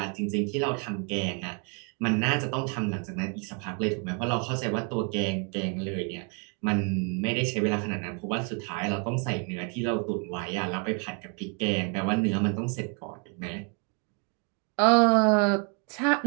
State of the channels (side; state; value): left; quieter; 37.7 dB